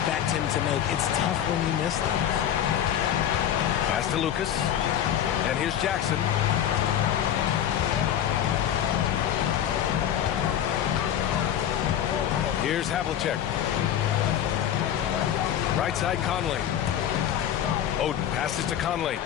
him to make. It's tough when you miss those. Pass to Lucas. And here's Jackson. Here's Havlicek. Right side Conley. Oden passes to Conley.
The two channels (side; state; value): right; quieter; 10.2 dB